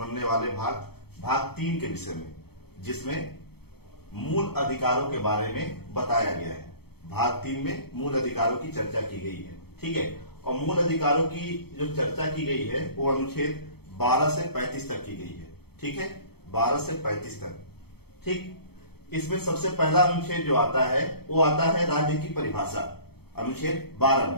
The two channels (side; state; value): right; late; 0.96 ms